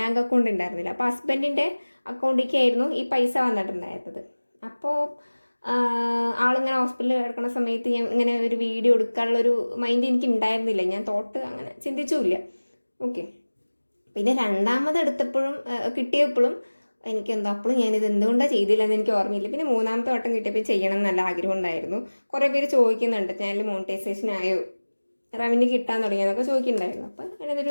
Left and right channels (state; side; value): inverted; both; correlation -1.00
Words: അക്കൗണ്ട് ഉണ്ടായിരുന്നില്ല. അപ്പോൾ ഹസ്ബൻഡിൻ്റെ അക്കൗണ്ടിലേക്കായിരുന്നു ഈ പൈസ വന്നിട്ടുണ്ടായിരുന്നത്. അപ്പോൾ ആളിങ്ങനെ ഹോസ്പിറ്റലിൽ കിടക്കുന്ന സമയത്ത് ഞാൻ ഇങ്ങനെ ഒരു വീഡിയോ എടുക്കാനുള്ളൊരു മൈൻഡ് എനിക്ക് ഉണ്ടായിരുന്നില്ല. ഞാൻ അങ്ങനെ ചിന്തിച്ചുമില്ല. ഓക്കെ, പിന്നെ രണ്ടാമത് എടുത്തപ്പോഴും കിട്ടിയപ്പോഴും എനിക്കെന്തോ അപ്പോഴും ഞാനിത് എന്തുകൊണ്ടാണ് ചെയ്തില്ലെന്ന് എനിക്ക് ഓർമ്മയില്ല. പിന്നെ മൂന്നാമത്തെ വട്ടം കിട്ടിയപ്പോൾ ചെയ്യണം എന്ന് നല്ല ആഗ്രഹം ഉണ്ടായിരുന്നു. കുറേ പേര് ചോദിക്കുന്നുണ്ട് ചാനൽ മോണിറ്റൈസേഷൻ ആയോ, റവന്യൂ കിട്ടാൻ തുടങ്ങിയെന്നൊക്കെ ചോദിക്കുന്നുണ്ടായിരുന്നു. അപ്പോൾ